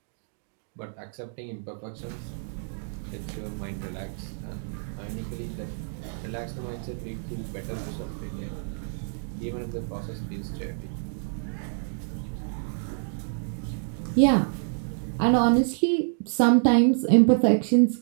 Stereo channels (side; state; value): left; silent; digital silence